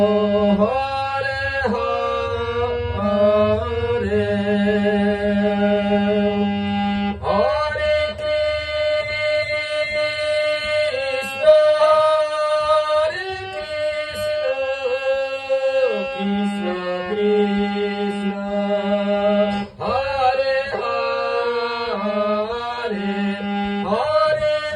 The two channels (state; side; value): identical; both; correlation 1.00